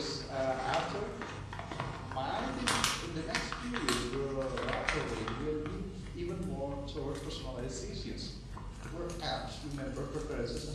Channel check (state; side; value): identical; both; correlation 1.00